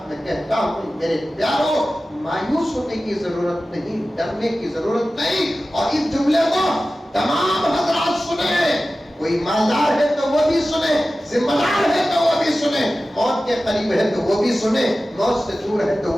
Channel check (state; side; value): normal; both; correlation 0.95